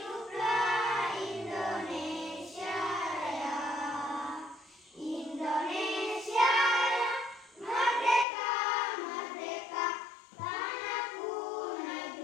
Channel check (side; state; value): right; drops out; at 8.2 s